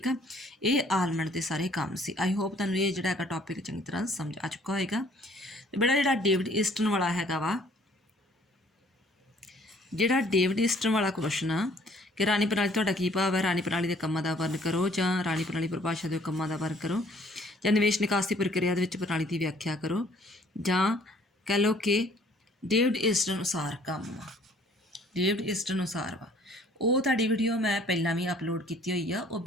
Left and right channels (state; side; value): normal; both; correlation 0.59